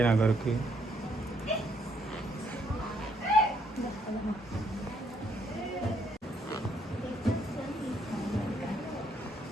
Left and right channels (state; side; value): normal; both; correlation 0.71